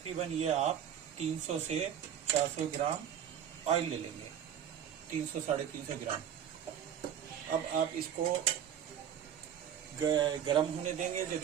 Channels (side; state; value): left; quieter; 9.3 dB